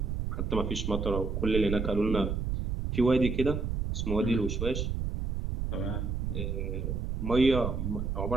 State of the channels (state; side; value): noise; right; rumble, 2 dB below the sound